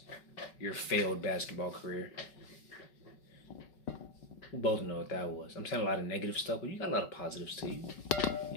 Your failed basketball career. We both know what that was. I'm saying a lot of negative stuff, but you got a lot of positives to you.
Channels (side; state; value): right; late; 5.4 ms